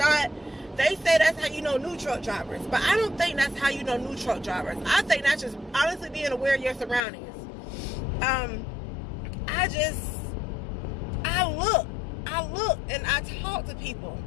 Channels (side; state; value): right; drops out; at 7.0 s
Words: They say that's how you know new truck drivers, but I don't think that's how you know new truck drivers. I think that's just honestly being aware of your surroundings. I look and I talk to people,